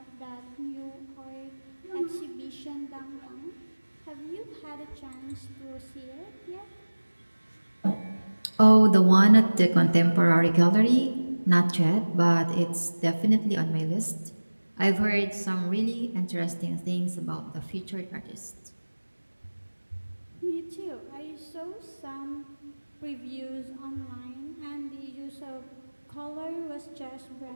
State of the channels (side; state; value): both; inverted; correlation -1.00